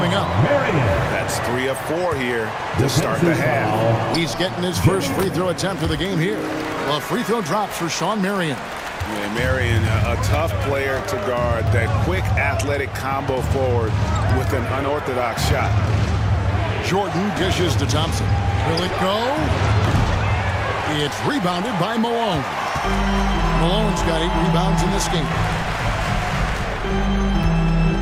up. That's 3 of 4 here to start the half. He's getting his first free throw attempt of the game here. Well, free throw drops for Shawn Marion. Yeah, Marion, a tough player to guard. That quick athletic combo forward with an unorthodox shot. Jordan dishes to Thompson. Will it go? It's rebounded by Malone. Malone's got 8 rebounds in this game.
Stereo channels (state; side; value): identical; both; correlation 1.00